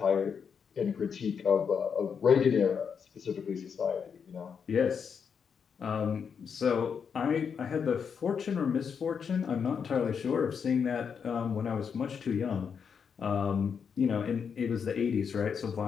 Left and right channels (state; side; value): quieter; right; 6.7 dB